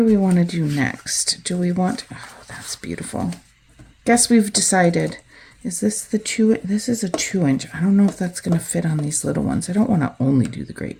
we want to do next? Do we want... Oh, that's beautiful. Guess we've decided... Is this the 2? This is a 2-inch. I don't know if that's going to fit on these little ones. I don't want to only do the great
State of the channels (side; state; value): both; identical; correlation 1.00